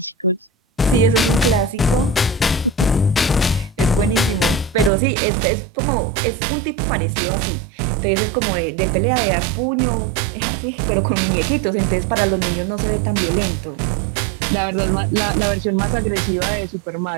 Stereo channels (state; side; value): drops out; left; at 4.9 s